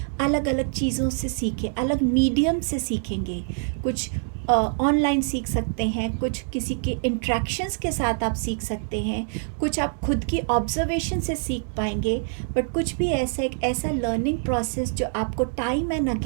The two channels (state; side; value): silent; left; 62 dB below the other